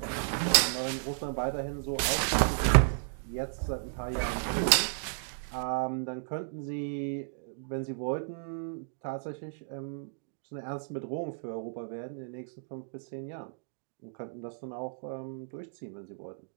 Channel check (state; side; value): silent; left; digital silence